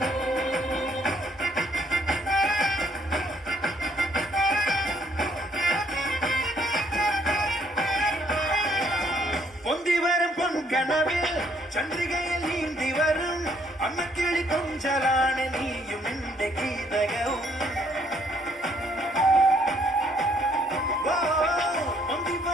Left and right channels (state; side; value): normal; both; correlation 0.66